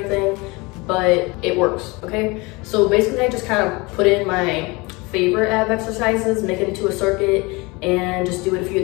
but it works, okay? So basically I just kind of put in my favorite ab exercises, make it into a circuit, and just do it a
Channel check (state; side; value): quieter; right; 25.3 dB